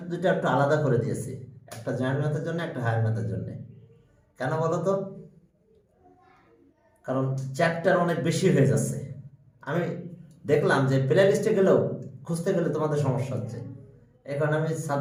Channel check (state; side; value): identical; both; correlation 1.00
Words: দুটো একটু আলাদা করে দিয়েছি, একটা জয়েন্ট ম্যাথের জন্য একটা হায়ার ম্যাথের জন্য। কেন বলো তো? কারণ চ্যাপ্টার অনেক বেশি হয়ে যাচ্ছে, আমি দেখলাম যে প্লে লিস্টে গেলেও খুঁজতে গেলে তোমাদের সমস্যা হচ্ছে, এই কারণে আমি